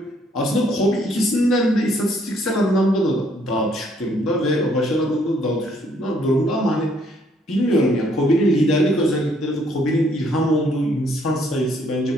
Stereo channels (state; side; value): normal; both; correlation 0.66